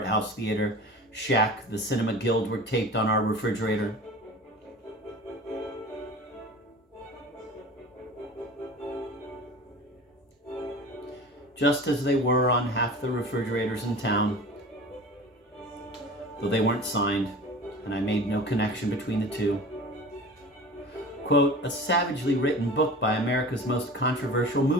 house theater, Shack, the Cinema Guild, were taped on our refrigerator. Just as they were on half the refrigerators in town, though they weren't signed, and I made no connection between the two. Quote, a savagely written book by America's most controversial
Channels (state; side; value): normal; both; correlation 0.37